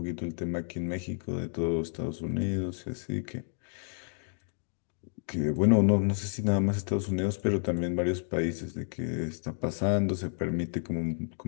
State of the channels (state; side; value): silent; right; digital silence